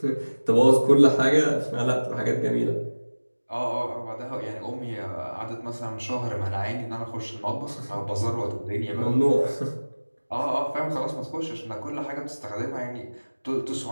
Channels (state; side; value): inverted; both; correlation -1.00